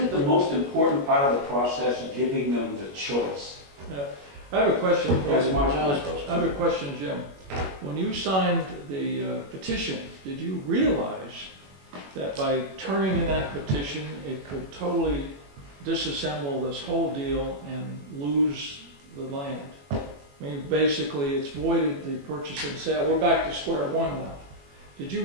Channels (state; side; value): late; left; 21 ms